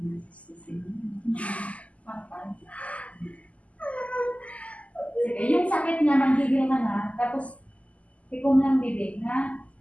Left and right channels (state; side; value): late; right; 0.068 ms